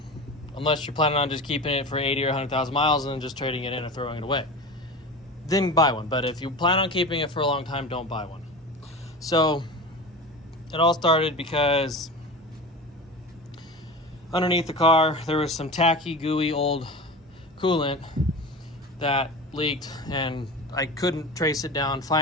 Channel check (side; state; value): both; normal; correlation 0.31